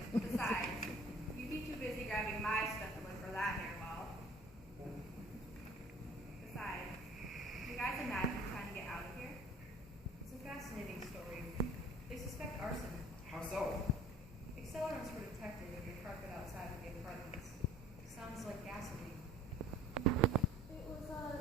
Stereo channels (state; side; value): normal; both; correlation 0.50